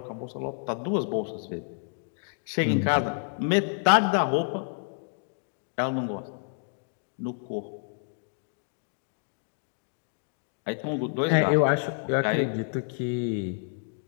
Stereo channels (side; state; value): right; silent; 59 dB below the other